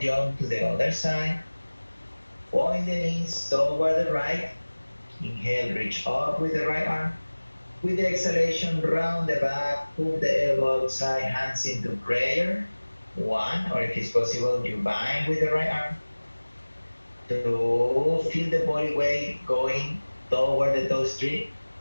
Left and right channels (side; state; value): both; inverted; correlation -1.00